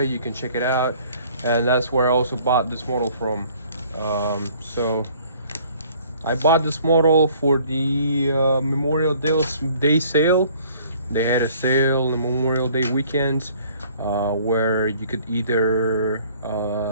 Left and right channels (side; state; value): both; inverted; correlation -0.56